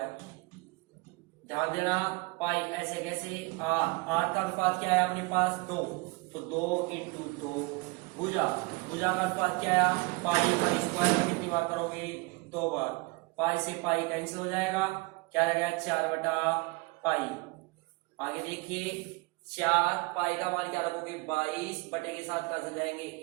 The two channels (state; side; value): quieter; left; 26.2 dB